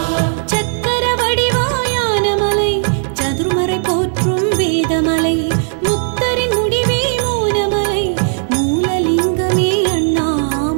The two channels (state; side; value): silent; left; digital silence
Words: சக்கர வடிவாயான மலை சதுர்மறை போற்றும் வேதமலை முக்தரின் முடிவே மோனமலை மூலலிங்கமே